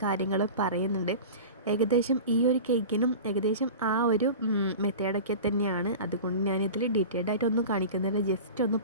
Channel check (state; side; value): inverted; both; correlation -0.34